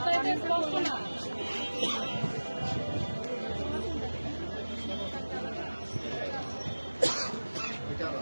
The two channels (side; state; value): both; inverted; correlation -1.00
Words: এটা স্পষ্ট না।